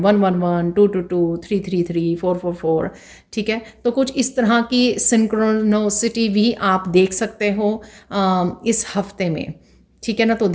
222, 333, 444, ठीक है। तो कुछ इस तरह की सिंक्रोनोसिटी भी आप देख सकते हो इस हफ्ते में, ठीक है ना। तो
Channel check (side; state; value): both; identical; correlation 1.00